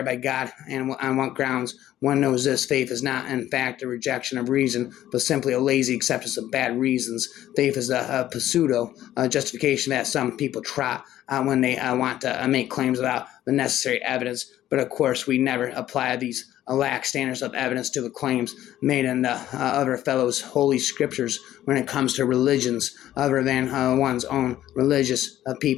by God, and on what grounds. One knows this: faith is not, in fact, a rejection of reason, but simply a lazy acceptance of bad reasons. Faith is a pseudo justification that some people trot when they want to make claims without the necessary evidence. But of course, we never apply these lax standards of evidence to the claims made in the other fellows' holy scriptures when it comes to religions other than one's own. Religious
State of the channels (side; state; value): right; quieter; 13.0 dB